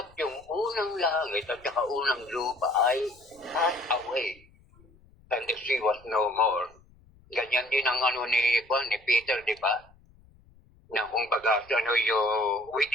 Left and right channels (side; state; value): left; noise; rumble, 28 dB below the sound